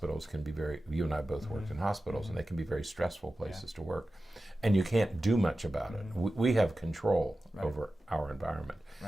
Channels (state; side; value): normal; both; correlation 0.94